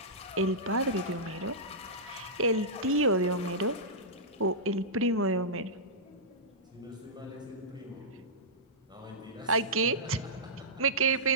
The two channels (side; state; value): both; normal; correlation -0.15